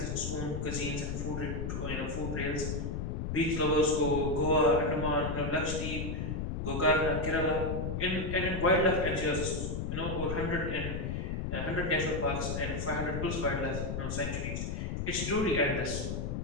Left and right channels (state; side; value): noise; left; rumble, 3 dB below the sound